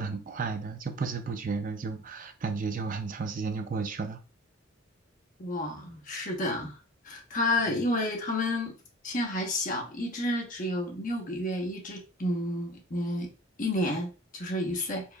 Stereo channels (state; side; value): normal; both; correlation 0.41